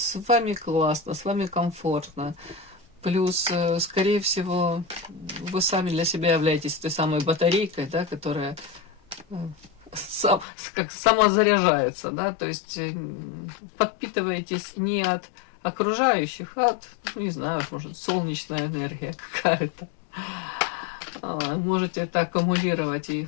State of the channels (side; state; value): right; drops out; at 10.5 s